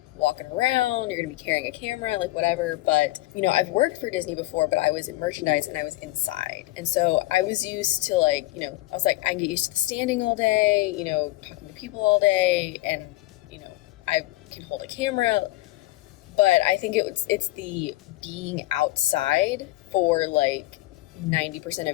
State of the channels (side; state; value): right; quieter; 18.4 dB